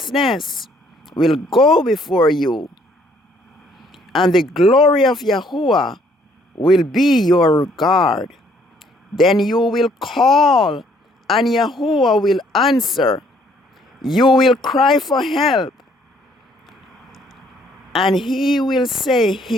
will go before you, and the glory of Yahuwah will be your guard. Then you will call, and Yahuwah will answer. You will cry for help, and he will say,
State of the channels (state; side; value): normal; both; correlation 0.64